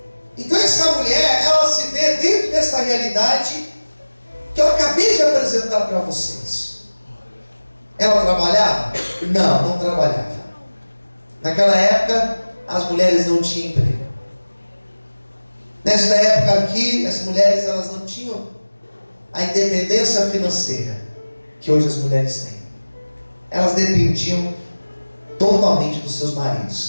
Então essa mulher, ela se vê dentro dessa realidade que eu acabei de apresentar para vocês. Ela trabalhava? Não, não trabalhava. Naquela época, as mulheres não tinham emprego. Nesta época aqui, as mulheres elas não tinham a independência financeira que hoje as mulheres têm. Elas dependiam totalmente dos seus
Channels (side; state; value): both; inverted; correlation -1.00